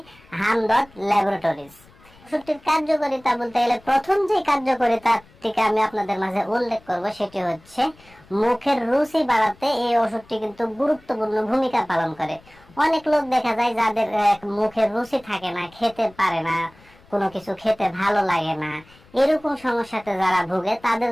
হামদর্দ ল্যাবরেটরিজ। ওষুধটির কার্যকারিতা বলতে গেলে প্রথম যে কার্যকারিতাটিকে আমি আপনাদের মাঝে উল্লেখ করব সেটি হচ্ছে মুখের রুচি বাড়াতে এই ওষুধটি কিন্তু গুরুত্বপূর্ণ ভূমিকা পালন করে। অনেক লোক দেখা যায় যাদের মুখের রুচি থাকে না, খেতে পারে না, কোনো কিছু খেতে ভালো লাগে না, এরকম সমস্যাতে যারা ভুগে তাদের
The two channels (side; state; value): left; noise; rumble, 27 dB below the sound